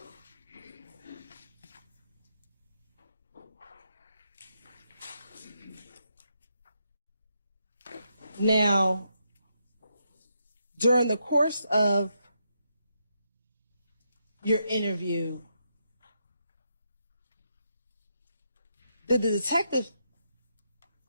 Now, during the course of your interview, did the detective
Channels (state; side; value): inverted; both; correlation -0.80